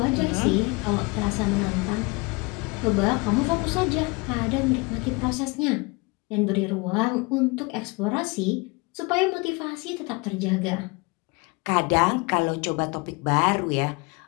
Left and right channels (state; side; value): quieter; right; 27.5 dB